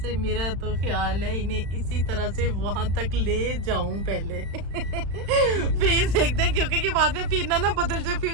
मेरा तो ख्याल है इन्हें इसी तरह से वहां तक ले जाऊं पहले। फिर देखते हैं, क्योंकि कि बाद में फिर ना बदल जाए,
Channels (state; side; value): late; left; 35 ms